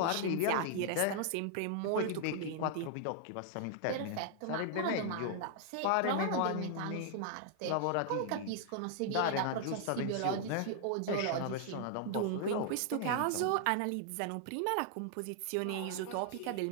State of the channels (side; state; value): both; different; correlation 0.00